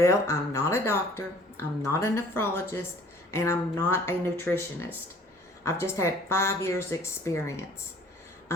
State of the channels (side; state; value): both; normal; correlation 0.53